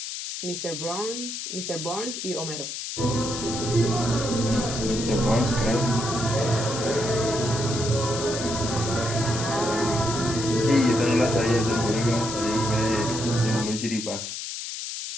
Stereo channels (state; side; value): noise; left; hiss, 6 dB below the sound